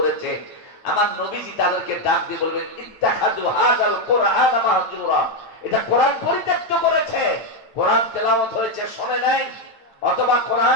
আমার নবীজি তাদেরকে ডাক দিয়ে বলবেন ইত্তাখাযু হাযাল কুরআন মাহজুরা, এটা কোরআন পরিত্যক্ত করেছে। কোরআন তেলাওয়াত হয়েছে শোনে নাই, অথবা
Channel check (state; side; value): late; right; 8.9 ms